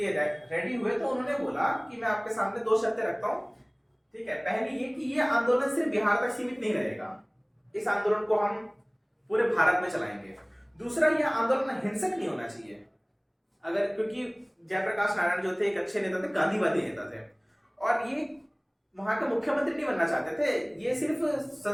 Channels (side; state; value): both; identical; correlation 1.00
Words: रेडी हुए तो उन्होंने बोला कि मैं आपके सामने दो शर्तें रखता हूं, ठीक है। पहली ये कि ये आंदोलन सिर्फ बिहार तक सीमित नहीं रहेगा, इस आंदोलन को हम पूरे भारत में चलाएंगे। दूसरा, यह आंदोलन हिंसक नहीं होना चाहिए। अगर, क्योंकि जयप्रकाश नारायण जो थे एक अच्छे नेता थे, गांधीवादी नेता थे, और ये वहां के मुख्यमंत्री नहीं बनना चाहते थे, ये सिर्फ